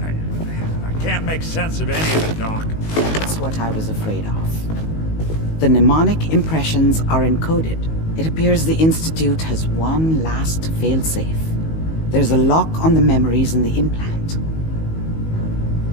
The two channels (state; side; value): late; right; 19 ms